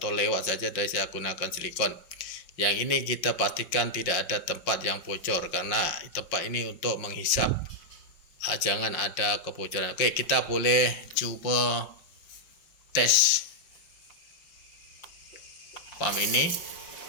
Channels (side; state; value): right; late; 5.7 ms